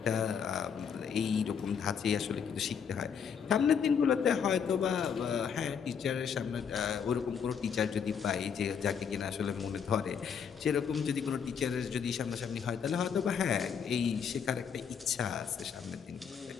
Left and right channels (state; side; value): quieter; right; 7.1 dB